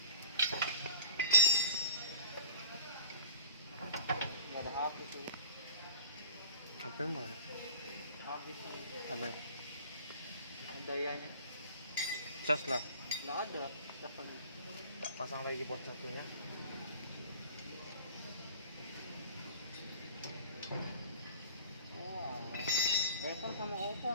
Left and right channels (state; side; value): inverted; both; correlation -0.46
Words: Ini ada habis ini. Apa yang mana? Habis ini. Apa? Dayanya Cas lah. nggak ada. Kita pasang lagi board satunya. Oh, iPhone sama Oppo